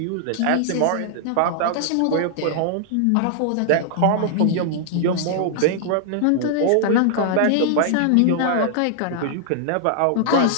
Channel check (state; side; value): different; both; correlation -0.01